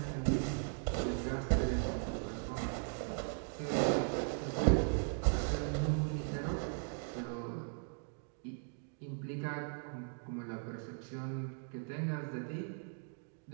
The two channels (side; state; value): left; silent; 52 dB below the other